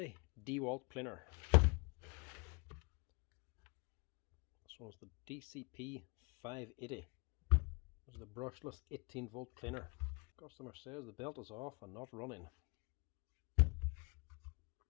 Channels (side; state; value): right; quieter; 31.4 dB